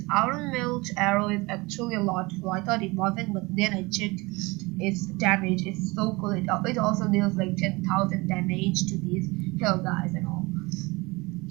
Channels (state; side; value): quieter; left; 24.2 dB